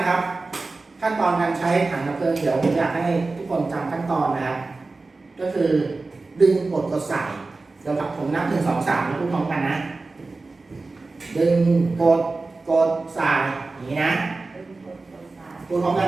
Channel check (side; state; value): left; quieter; 3.6 dB